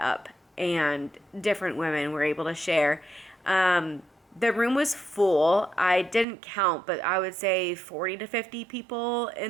and different women were able to share. The room was full. I didn't count, but I would say 40 to 50 people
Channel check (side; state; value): left; drops out; at 6.2 s